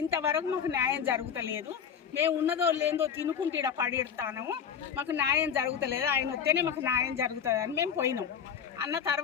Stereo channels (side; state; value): right; quieter; 7.7 dB